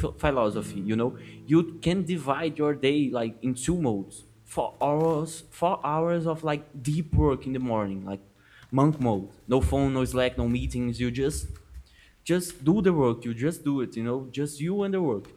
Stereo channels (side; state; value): both; identical; correlation 1.00